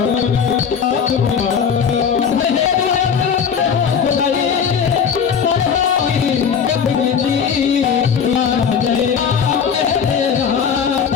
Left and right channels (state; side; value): quieter; right; 7.1 dB